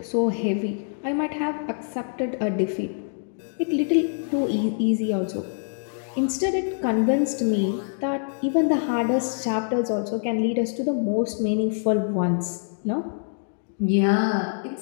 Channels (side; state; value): right; silent; digital silence